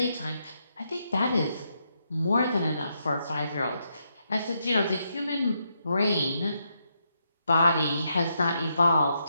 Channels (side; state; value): both; inverted; correlation -0.80